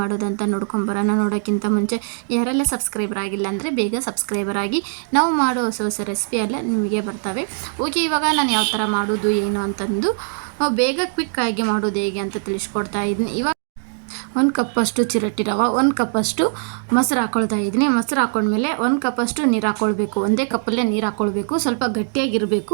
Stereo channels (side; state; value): left; silent; 65 dB below the other